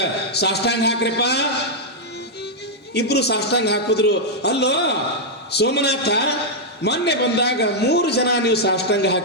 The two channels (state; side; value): normal; both; correlation -0.04